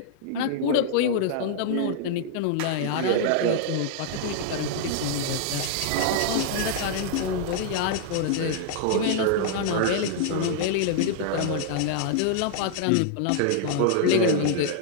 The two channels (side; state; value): both; different; correlation -0.01